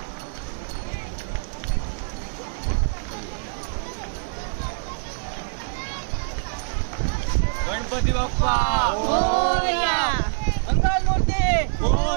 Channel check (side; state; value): left; silent; 62 dB below the other